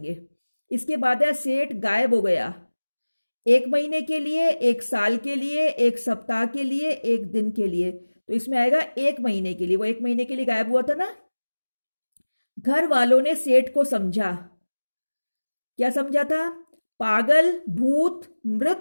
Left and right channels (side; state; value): both; inverted; correlation -1.00